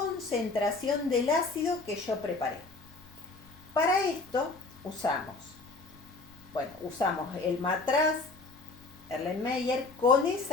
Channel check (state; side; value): quieter; right; 3.5 dB